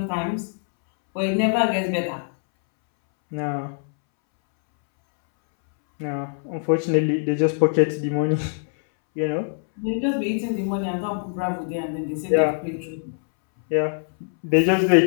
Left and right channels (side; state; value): right; silent; 63 dB below the other